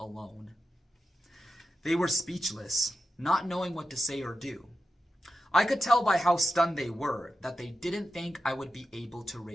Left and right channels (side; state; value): both; normal; correlation 0.90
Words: They were speechless, not knowing what to say or do. I could tell by how stunned they were that they didn't think I would be able to